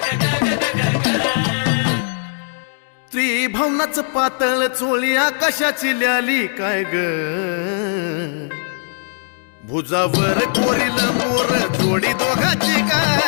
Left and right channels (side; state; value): right; silent; digital silence